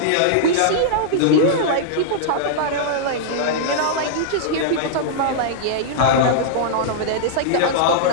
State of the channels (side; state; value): both; different; correlation -0.02